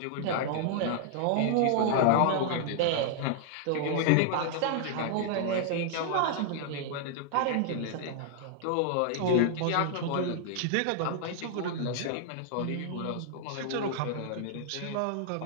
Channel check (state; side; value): different; both; correlation 0.00